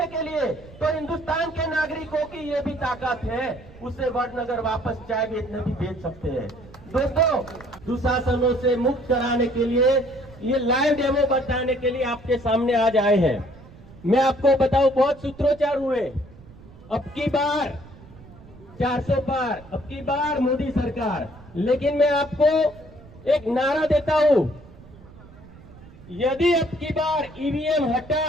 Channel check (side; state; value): right; noise; rumble, 21 dB below the sound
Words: के लिए, तो हिंदुस्तान के नागरिकों की ये भी ताकत है, उसे वडनगर वापस चाय बेचने भी बेच सकते हैं। दोस्तों, दुशासनों से मुक्त कराने के लिए ये लाइव डेमो बताने के लिए आपके सामने आज आए हैं। मैं आपको बताऊं, बहुत सूत्रोच्चार हुए, अब की बार 400 पार, अब की बार मोदी सरकार, लेकिन मैं आपको एक नारा देता हूं, यदि अब की बार ईवीएम